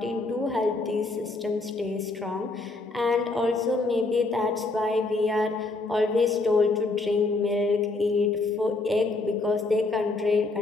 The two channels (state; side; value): quieter; right; 3.3 dB